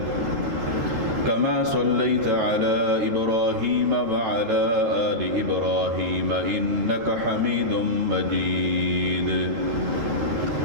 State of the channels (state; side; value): late; left; 9.1 ms